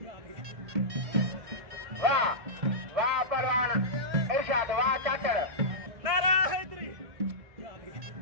Wah Parwan Irsyad, wah Cacar. Nara Hedri.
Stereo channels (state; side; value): late; left; 1.6 ms